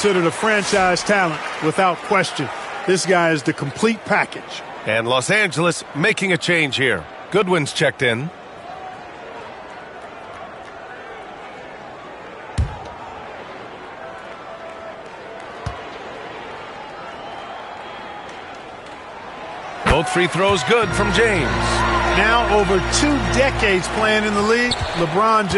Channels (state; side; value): identical; both; correlation 1.00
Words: a franchise talent without question. This guy is the complete package. And Los Angeles making a change here. Goodwin's checked in. Both free throws good from James. Now over 2 decades playing in the league, LeBron